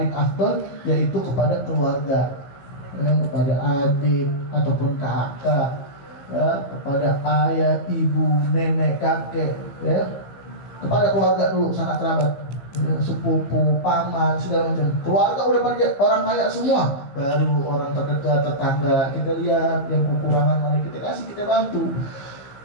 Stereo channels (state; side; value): late; right; 14 ms